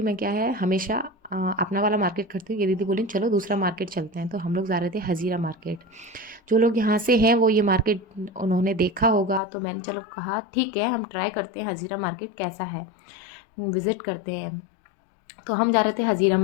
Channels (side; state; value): right; drops out; at 9.4 s